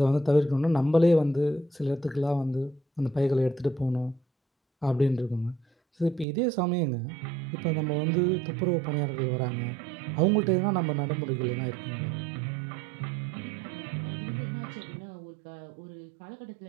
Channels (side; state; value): left; drops out; at 6.2 s